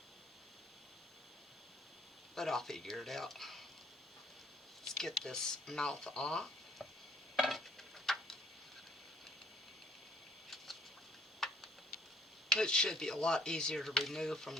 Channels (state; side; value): normal; both; correlation 0.62